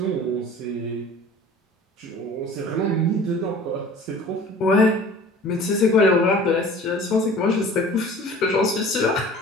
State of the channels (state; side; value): normal; both; correlation 0.45